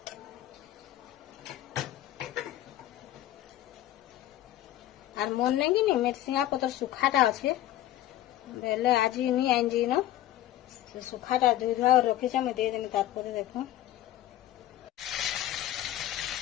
और मन नहीं कि नहीं मेरसिंगा पतर सुखाटा अच्छे बेले आज नहीं आइन जी न सुखाटा धोई धुआ रखी मैं दे देमी तारपर देखो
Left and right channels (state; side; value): quieter; right; 13.6 dB